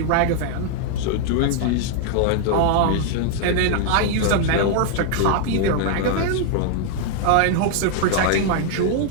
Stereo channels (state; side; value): different; both; correlation 0.00